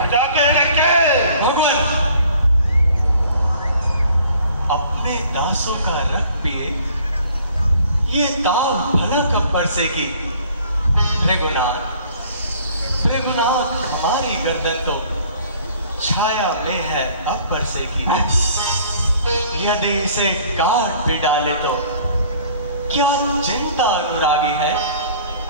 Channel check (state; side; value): inverted; both; correlation -0.54